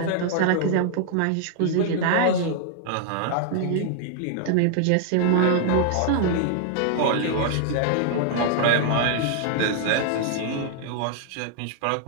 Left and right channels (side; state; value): both; different; correlation -0.01